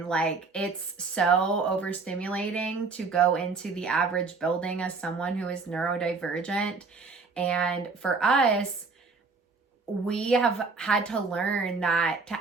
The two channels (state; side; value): quieter; left; 4.4 dB